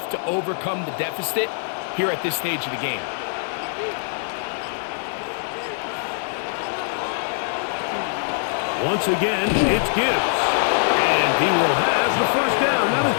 to overcome the deficit here at this stage of the game. Once again, it's Gibbs. And he will have the first down. Not a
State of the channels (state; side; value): silent; right; digital silence